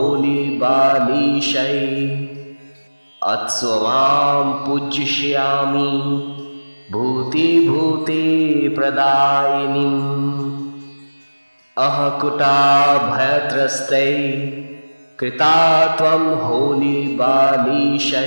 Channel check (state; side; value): inverted; both; correlation -1.00